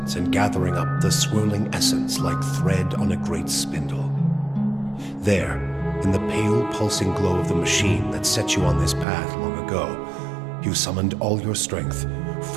and gathering up the swirling essence like thread on a great spindle. There, in the pale, pulsing glow of the machine that set you on this path long ago, you summoned all your strength,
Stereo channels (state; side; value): drops out; left; at 9.1 s